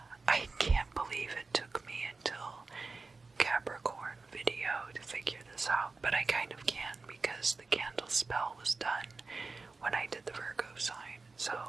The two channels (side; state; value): left; quieter; 3.9 dB